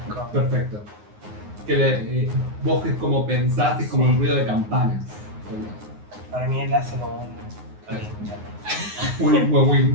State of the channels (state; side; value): late; left; 9.6 ms